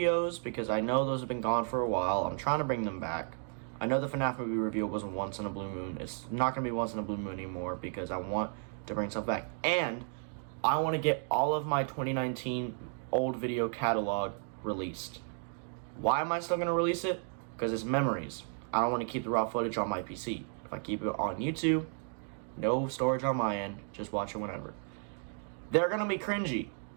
because I know those have been gone for a while. I'm trying to bring them back. I know the FNAF movie review was once in a blue moon. It's not going to be once in a blue moon anymore, because I want to bring stuff back. And I want to get all of my 2019 old video catalog released. Why am I still going to release it? Because it's memories. I don't want to keep the raw footage on my PC. If I keep it on YouTube, no storage on my end, just watch it whenever. They're going to be cringy.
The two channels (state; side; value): silent; left; 55 dB below the other